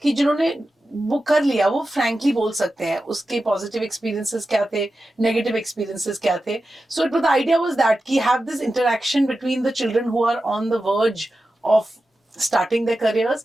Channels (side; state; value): both; normal; correlation 0.92